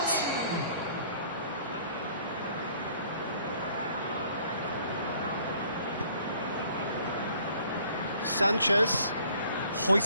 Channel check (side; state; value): both; inverted; correlation -0.57